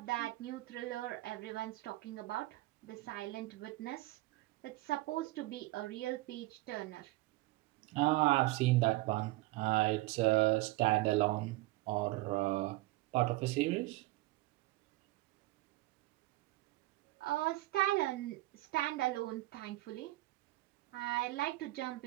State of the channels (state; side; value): quieter; left; 19.4 dB